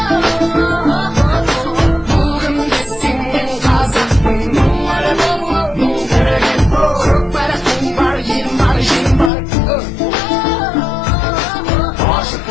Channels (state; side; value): drops out; right; at 9.3 s